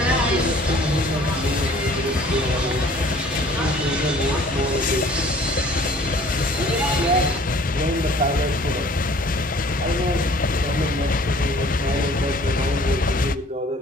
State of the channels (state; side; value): normal; both; correlation 0.53